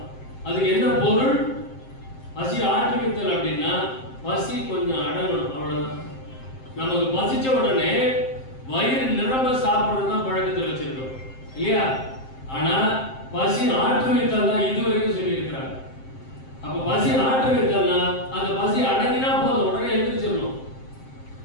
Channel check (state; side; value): late; right; 7.6 ms